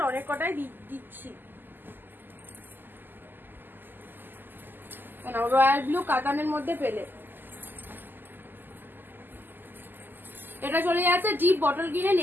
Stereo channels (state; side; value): late; left; 0.091 ms